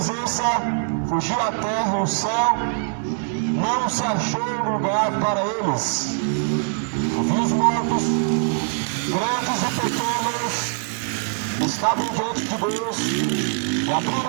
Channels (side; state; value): left; silent; 56 dB below the other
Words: fugiu a terra e o céu, não se achou lugar para eles. E vi os mortos, grandes e pequenos, estavam diante de Deus, e